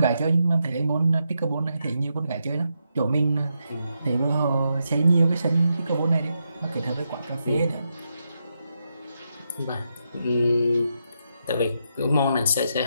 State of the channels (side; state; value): both; inverted; correlation -0.83